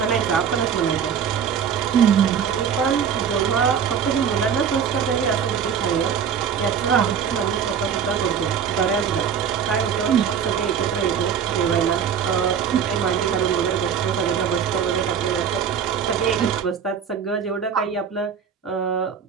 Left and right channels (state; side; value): quieter; left; 7.6 dB